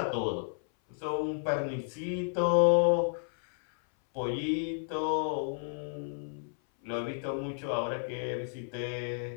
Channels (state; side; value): silent; right; 57 dB below the other